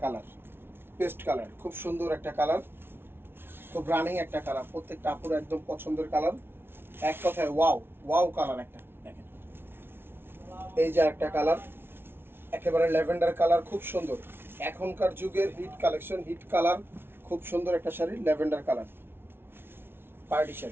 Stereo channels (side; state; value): left; late; 0.11 ms